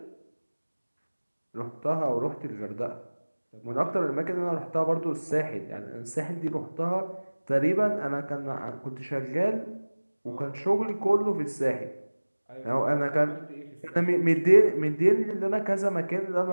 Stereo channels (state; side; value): inverted; both; correlation -1.00